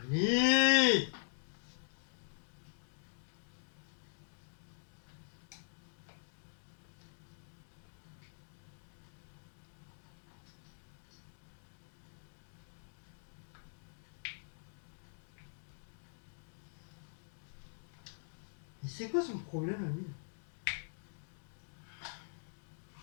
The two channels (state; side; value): silent; right; digital silence